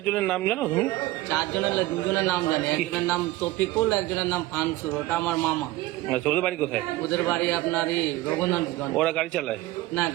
জনের নাম জানো তুমি? 4 জনের 2 জনের নাম জানি। একজনের নাম তফিকুল, একজনের নাম ফানসুর, ওটা আমার মামা। আচ্ছা, ওদের বাড়ি কোথায়? ওদের বাড়ি আপনার রঘুনাথগঞ্জ। ওরা গাড়ি চালায়? না,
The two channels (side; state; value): left; quieter; 17.6 dB